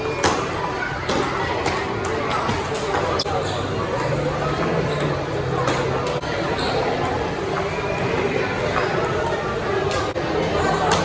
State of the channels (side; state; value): both; identical; correlation 1.00